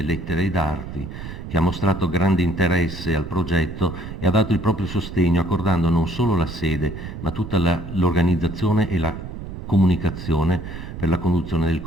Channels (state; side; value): noise; right; rumble, 9 dB below the sound